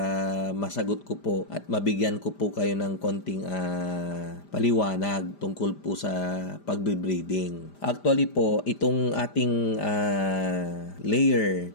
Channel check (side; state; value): right; late; 5.0 ms